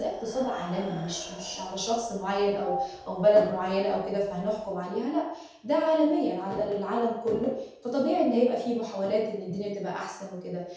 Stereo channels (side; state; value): both; identical; correlation 1.00